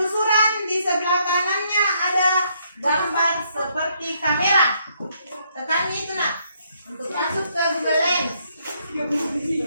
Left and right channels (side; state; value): both; inverted; correlation -0.72